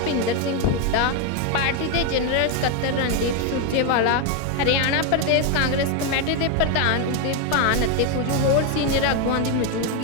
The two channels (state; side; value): different; both; correlation 0.01